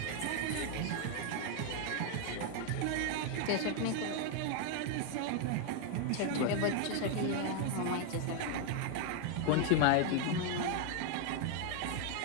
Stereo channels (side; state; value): both; different; correlation 0.00